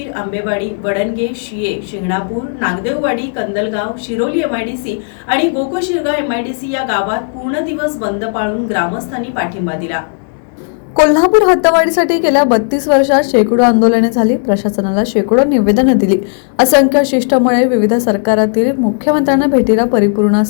आंबेवाडी, वडणगे, शिये, शिंगणापूर, नागदेववाडी, कंदलगाव, शिरोली एमआयडीसी आणि गोकुशिरगाव एमआयडीसी या गावात पूर्ण दिवस बंद पाळून ग्रामस्थांनी पाठिंबा दिला. कोल्हापूर हद्दवाढीसाठी गेल्या 32 वर्षात शेकडो आंदोलने झाली, प्रशासनाला शेकडो निवेदनं दिली, असंख्य शिष्टमंडळे विविध सरकारातील मुख्यमंत्र्यांना भेटीला परिपूर्ण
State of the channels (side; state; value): right; silent; 58 dB below the other